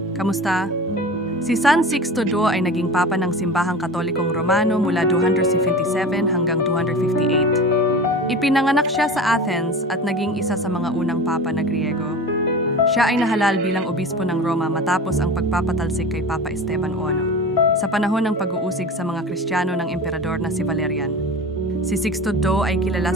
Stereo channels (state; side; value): normal; both; correlation 0.33